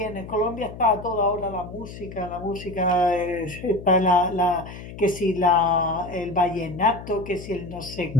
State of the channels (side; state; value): left; noise; hum, 13 dB below the sound